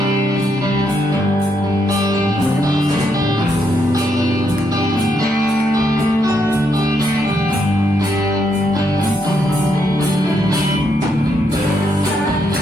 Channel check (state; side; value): normal; both; correlation 0.77